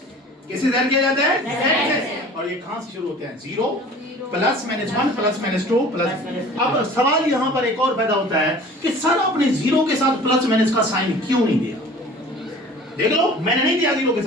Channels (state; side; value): normal; both; correlation 0.45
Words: کسے ظاہر کیا جاتا ہے؟ Z سے. اور یہ کہاں سے شروع ہوتے ہیں؟ 0 + -1 + -2 اب سوال یہاں پر ایک اور پیدا ہوتا ہے کہ سر آپ نے 0 کے ساتھ پلس مائنس کا سائن کیوں نہیں دیا؟ دیکھ لو، میں نے نہیں دیا 0 کے